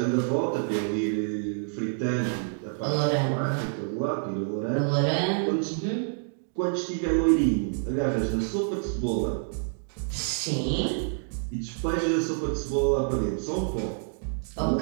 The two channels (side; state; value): left; silent; digital silence